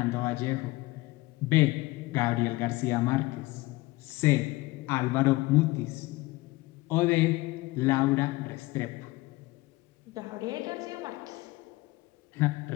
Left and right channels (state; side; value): quieter; right; 20.6 dB